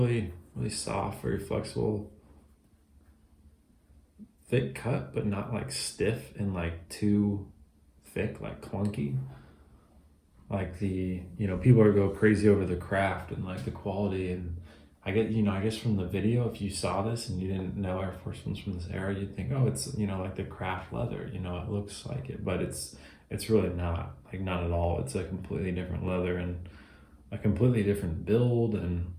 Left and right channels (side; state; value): both; identical; correlation 1.00